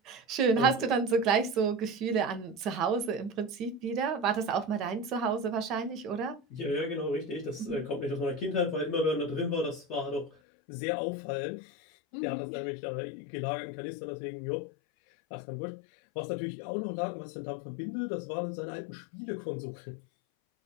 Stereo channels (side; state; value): right; drops out; at 10.3 s